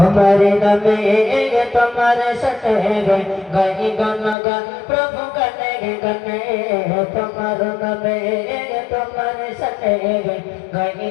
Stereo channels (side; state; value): right; drops out; at 4.4 s